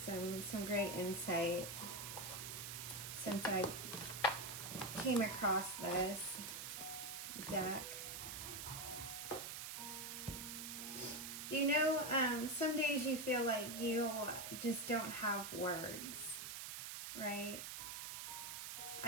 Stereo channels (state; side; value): noise; right; hiss, 6 dB below the sound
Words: great insight since I came across this deck. Do you know, some days you feel like you just don't have words, right?